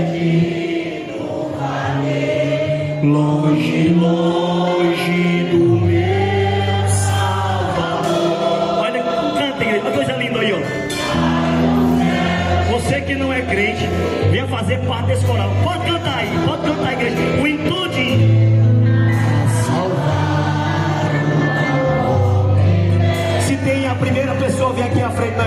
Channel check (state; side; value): identical; both; correlation 1.00